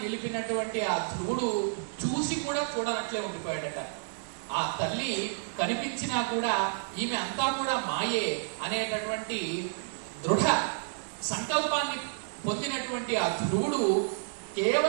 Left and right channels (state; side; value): silent; left; digital silence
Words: నిలిపినటువంటి ఆ ధ్రువుడు చూసి కూడా చూడనట్లే ఉండిపోయాడట. ఆ తల్లి కనిపించినా కూడా ఈమె అంతా కూడా మాయే అనేటటువంటి దృఢ సంకల్పాన్ని పొందినటువంటి ఆ ధ్రువుడు